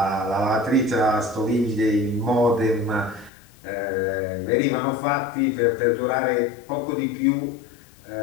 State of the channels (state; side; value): drops out; right; at 3.3 s